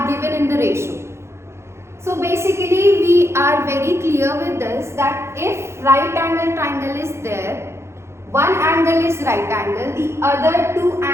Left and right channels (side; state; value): left; late; 0.13 ms